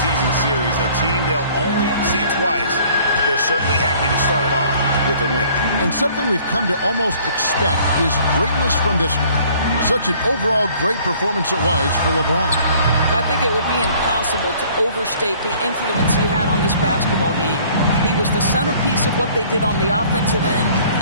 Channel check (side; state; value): both; inverted; correlation -0.55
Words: series, a team they'll only see twice. They're certainly happy to start it off with a win. And something we've come to almost expect is greatness from this game. Such an overall great performance it was for LeBron. I think it would be impossible to overstate the influence he had on this basketball game. He was the centerpiece of what they did on the offensive end